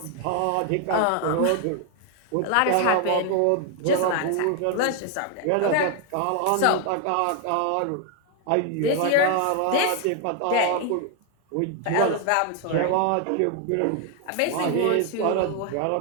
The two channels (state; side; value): different; both; correlation 0.01